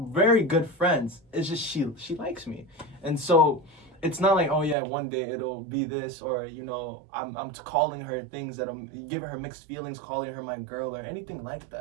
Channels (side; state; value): left; drops out; at 4.8 s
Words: good friends. It's just she likes me, and so it's not like, oh yeah, one day it'll be this, or you know, I'm calling her things that I'm giving her mixed feelings, calling her my girl or anything like